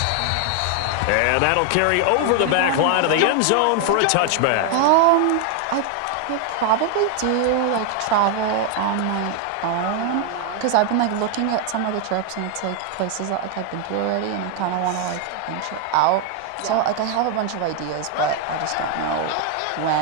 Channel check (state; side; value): different; both; correlation 0.01